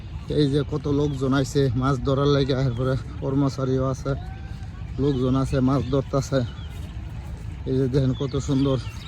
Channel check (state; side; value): identical; both; correlation 1.00